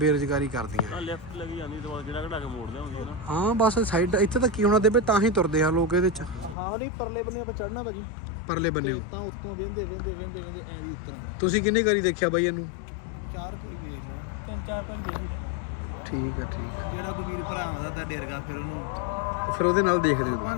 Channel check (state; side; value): drops out; right; at 6.6 s